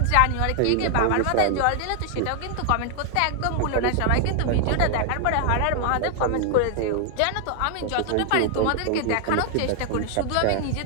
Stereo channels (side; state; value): both; different; correlation 0.00